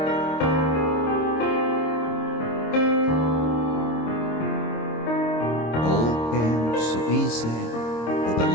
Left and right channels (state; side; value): late; right; 26 ms